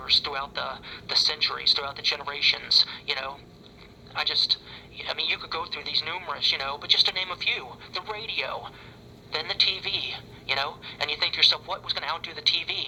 throughout the centuries, throughout the generations, you could go through these numerous, but just to name a few, the radio, then the TV, and you think to yourself, what was going to outdo the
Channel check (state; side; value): identical; both; correlation 1.00